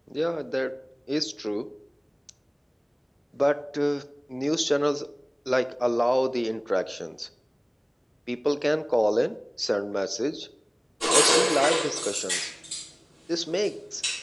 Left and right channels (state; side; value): identical; both; correlation 1.00